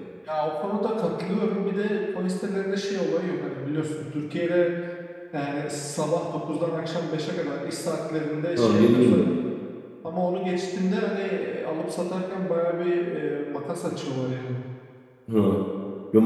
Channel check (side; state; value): both; identical; correlation 1.00